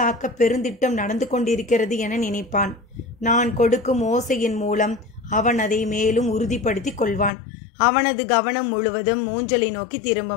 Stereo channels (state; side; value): drops out; right; at 7.3 s